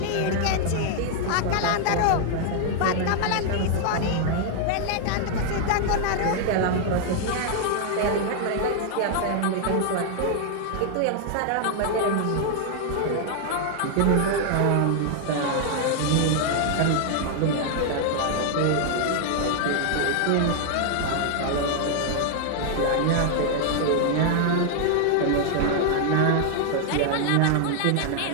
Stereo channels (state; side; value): different; both; correlation 0.00